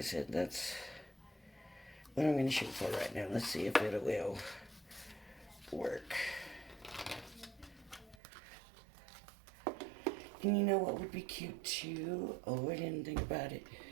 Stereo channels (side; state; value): left; drops out; at 8.2 s